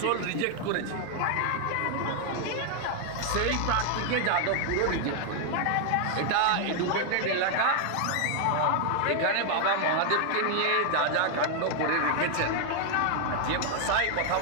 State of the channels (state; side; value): different; both; correlation 0.00